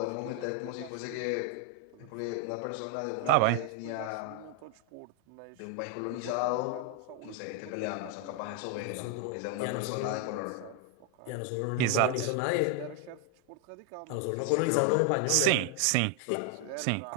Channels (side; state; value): both; different; correlation 0.00